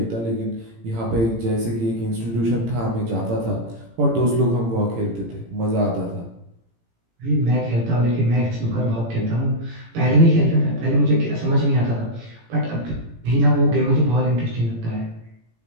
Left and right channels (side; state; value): left; late; 18 ms